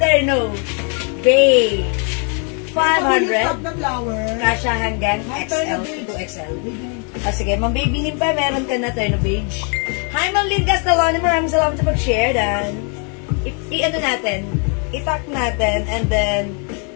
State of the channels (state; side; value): quieter; right; 38.6 dB